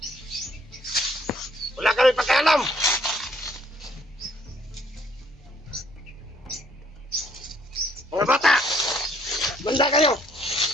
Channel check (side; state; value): both; normal; correlation 0.65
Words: Wala kami pakialam. Mga bata, banda kayo.